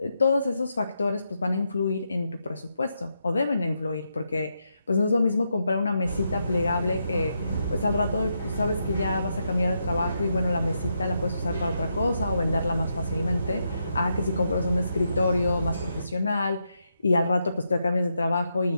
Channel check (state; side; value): inverted; both; correlation -0.82